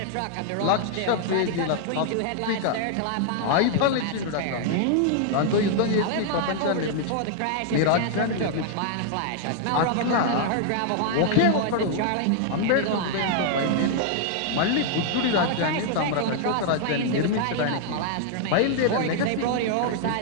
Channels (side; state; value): both; different; correlation -0.01